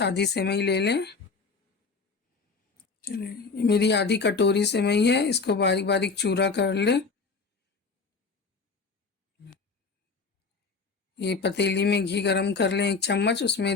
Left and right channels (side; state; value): right; quieter; 4.5 dB